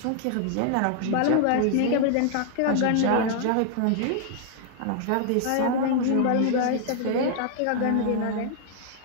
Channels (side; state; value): both; different; correlation -0.01